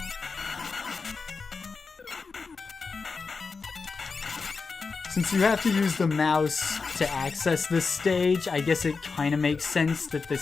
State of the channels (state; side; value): quieter; right; 4.6 dB